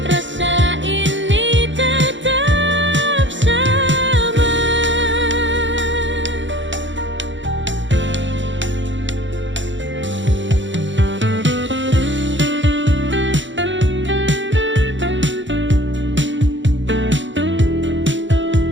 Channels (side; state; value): left; late; 0.54 ms